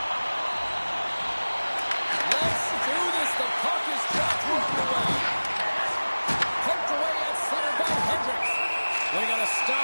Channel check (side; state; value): both; inverted; correlation -1.00